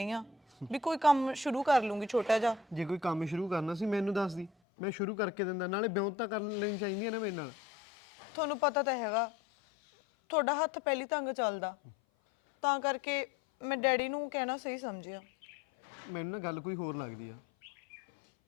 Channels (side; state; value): right; drops out; at 4.5 s